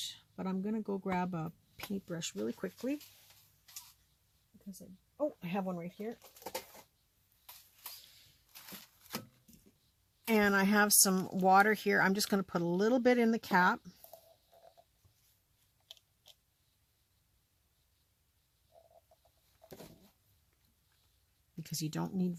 But I'm going to go grab a paintbrush really quickly. Because I have one right here. And I have some water here. I'm just going to put a little bit in the cap. Because you don't need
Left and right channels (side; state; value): both; identical; correlation 1.00